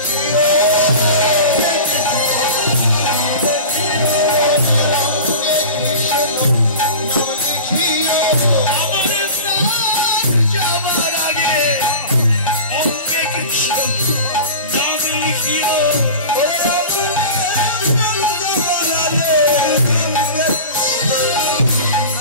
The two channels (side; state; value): both; inverted; correlation -0.34